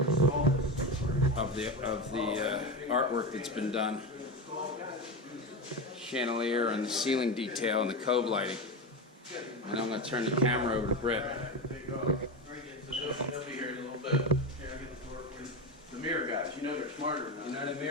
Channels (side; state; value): both; normal; correlation 0.19